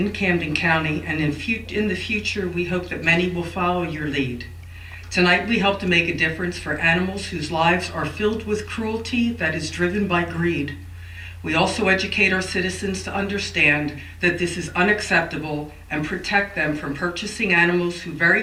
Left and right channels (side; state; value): both; identical; correlation 1.00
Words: Camden County, and in the future, we hope that many will follow your lead. Tonight, we hope to make a difference for animals whose lives are filled with cruelty that is driven by greed. We also educate our citizens to understand that this is unacceptable and protect them from purchasing animals who